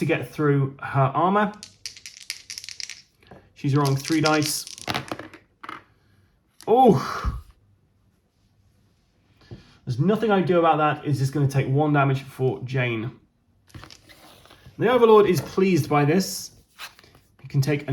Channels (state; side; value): identical; both; correlation 1.00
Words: get through her armor. She's rolling 3 dice. Oh! There's nothing I can do about that. It's just going to take 1 damage for Jane. The Overlord is pleased by this. He can take